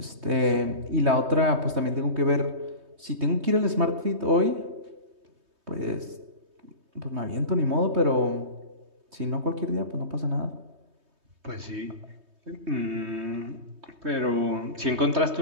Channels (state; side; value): late; left; 3.2 ms